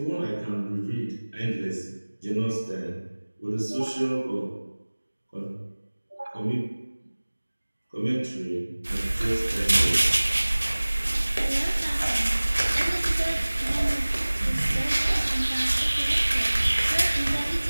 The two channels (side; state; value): both; inverted; correlation -1.00